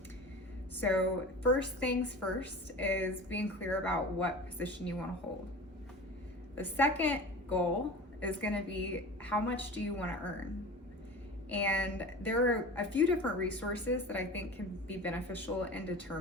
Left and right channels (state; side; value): normal; both; correlation 0.35